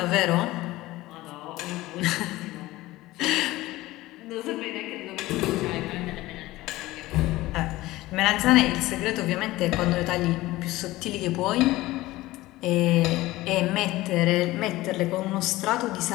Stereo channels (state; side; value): quieter; right; 18.1 dB